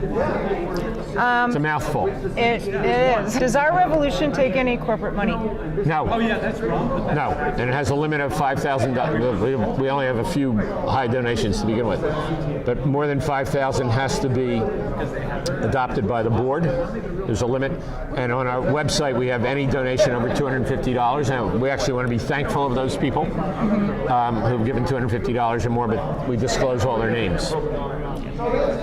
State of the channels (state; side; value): identical; both; correlation 1.00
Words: It's a mouthful. It is. Does our revolution take any corporate money? No. Oh yeah, that's wrong. No, and it has a limit of $5,000. We only have a few high donations to begin with, but more than $5,000 has to be adopted by the board. There's a limit, and on our website we have any donation over $250. And we actually want to be thankful of those people who've given $250 or more, but we disclose all their names.